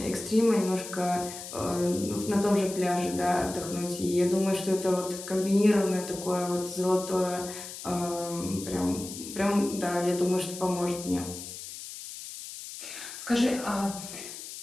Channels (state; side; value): noise; left; hiss, 11 dB below the sound